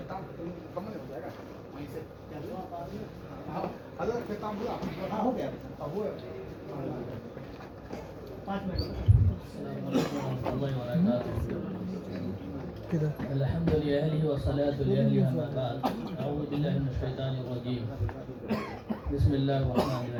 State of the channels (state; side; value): identical; both; correlation 1.00